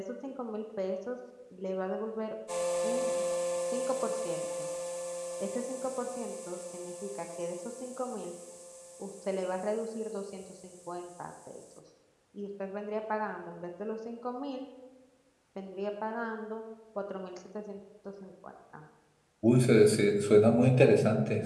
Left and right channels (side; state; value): both; identical; correlation 1.00